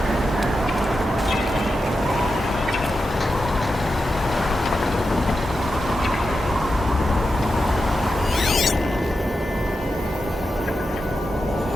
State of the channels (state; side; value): normal; both; correlation 0.89